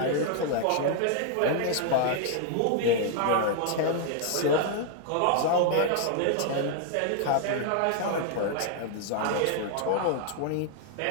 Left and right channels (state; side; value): different; both; correlation 0.00